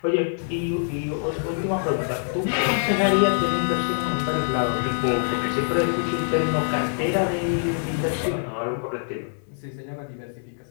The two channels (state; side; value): silent; right; 62 dB below the other